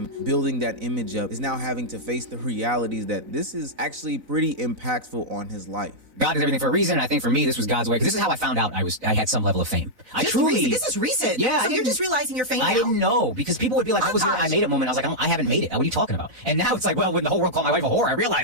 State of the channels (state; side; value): late; left; 4.0 ms